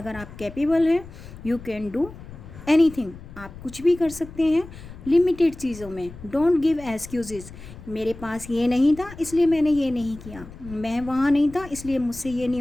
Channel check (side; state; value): left; noise; rumble, 16 dB below the sound